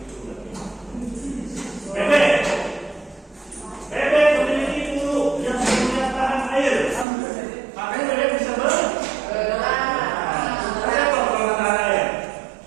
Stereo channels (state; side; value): drops out; left; at 7.1 s